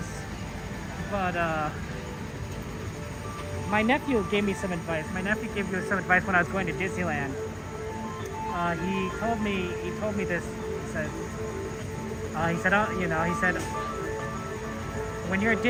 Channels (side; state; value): both; identical; correlation 1.00